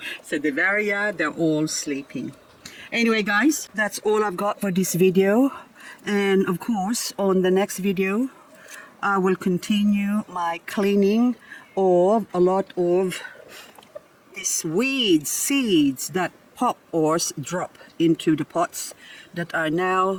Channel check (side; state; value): both; identical; correlation 1.00